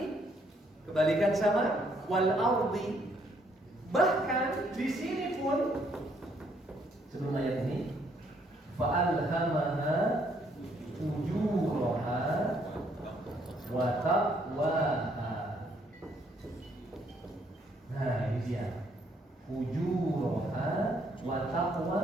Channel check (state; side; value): normal; both; correlation 0.69